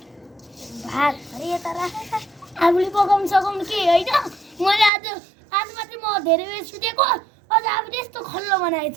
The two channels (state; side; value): drops out; left; at 4.9 s